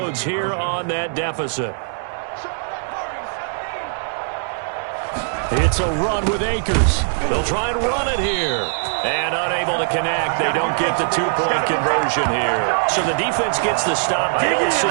here on that deficit. It's a run with Akers. They'll try and run it here. And unable to connect. They don't get the 2-point conversion here. So the defense gets the stop. I know it's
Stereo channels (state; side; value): silent; left; digital silence